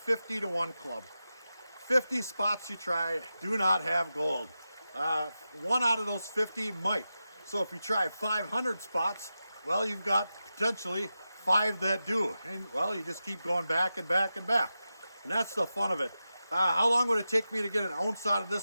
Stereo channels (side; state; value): both; inverted; correlation -0.92